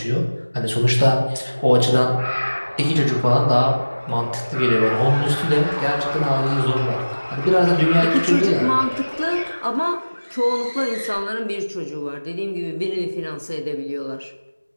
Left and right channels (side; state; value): both; inverted; correlation -1.00